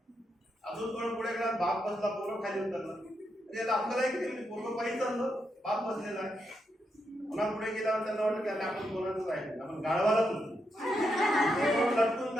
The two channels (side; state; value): both; normal; correlation 0.82